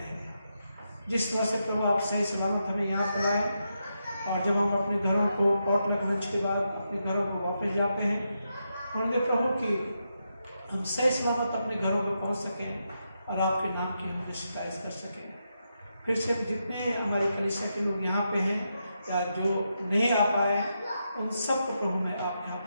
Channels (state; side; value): inverted; both; correlation -0.84